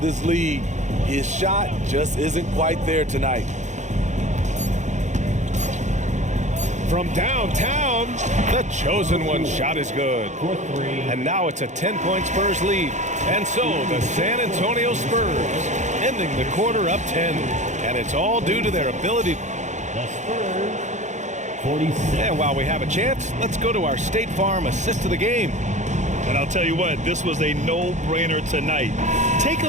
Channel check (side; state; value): left; late; 0.34 ms